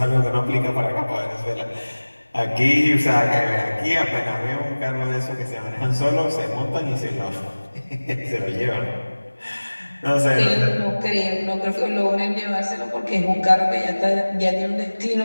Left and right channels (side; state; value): both; inverted; correlation -1.00